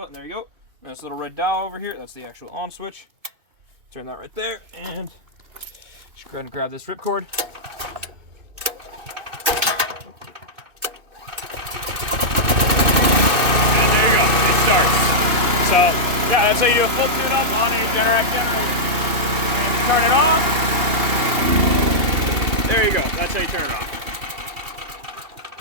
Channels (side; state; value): left; late; 2.7 ms